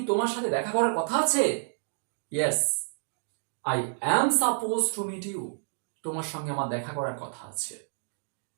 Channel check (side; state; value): left; silent; digital silence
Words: তোমার সাথে দেখা করার কথা আছে? yes, I am supposed to meet you. তোমার সঙ্গে আমার দেখা করার কথা আছে।